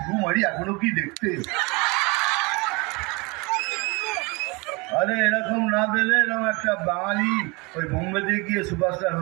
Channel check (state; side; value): quieter; left; 27.5 dB